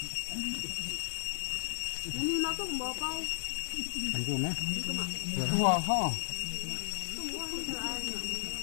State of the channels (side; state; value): right; silent; 55 dB below the other